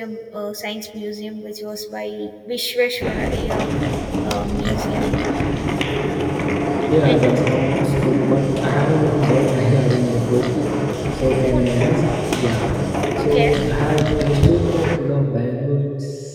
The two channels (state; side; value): identical; both; correlation 1.00